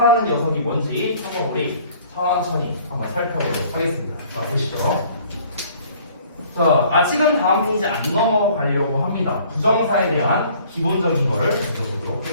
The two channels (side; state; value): both; inverted; correlation -0.55